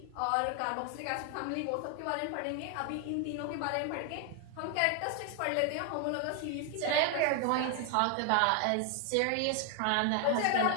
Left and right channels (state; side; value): different; both; correlation 0.01